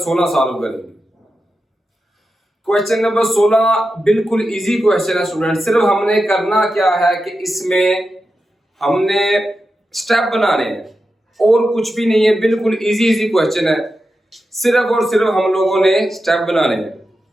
सॉल्व करेंगे। क्वेश्चन नंबर 16 बिल्कुल इजी क्वेश्चन है स्टूडेंट। सिर्फ हमने करना क्या है कि इसमें हमने स्टेप बनाने हैं और कुछ भी नहीं है। बिल्कुल इजी क्वेश्चन है, सिर्फ और सिर्फ हम लोगों ने स्टेप बनाने हैं।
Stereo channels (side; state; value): both; normal; correlation 0.90